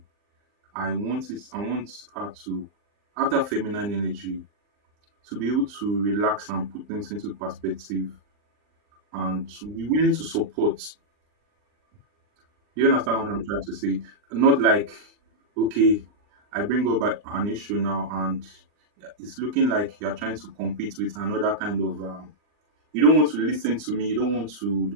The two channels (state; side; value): late; left; 39 ms